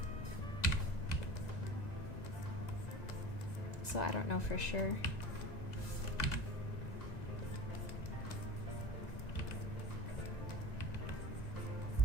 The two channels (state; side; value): late; right; 1.9 ms